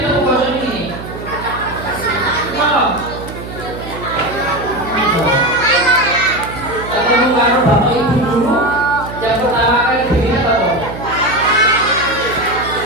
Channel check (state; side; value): noise; right; hum, 11 dB below the sound